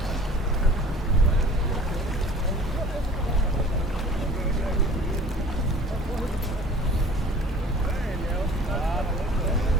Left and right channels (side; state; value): both; normal; correlation 0.47